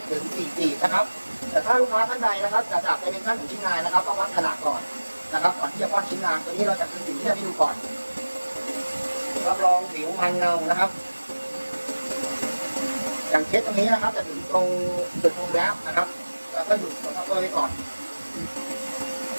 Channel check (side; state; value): both; inverted; correlation -1.00